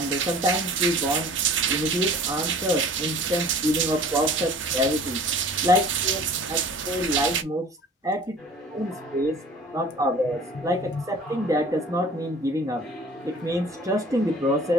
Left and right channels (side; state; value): both; normal; correlation 0.47